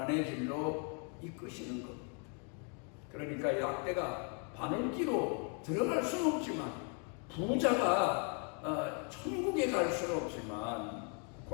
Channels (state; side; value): quieter; right; 39.1 dB